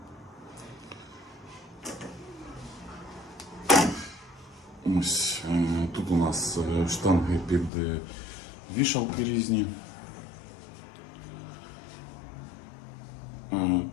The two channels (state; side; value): drops out; right; at 7.7 s